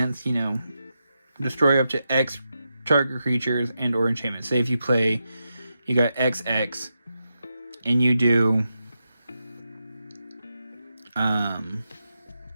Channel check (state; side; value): inverted; both; correlation -0.87